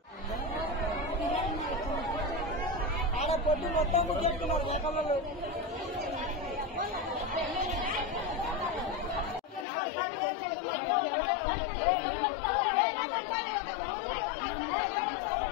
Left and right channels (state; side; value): drops out; right; at 9.7 s